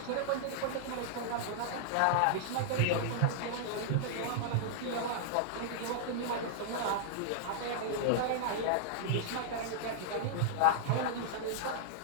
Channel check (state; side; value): different; both; correlation -0.01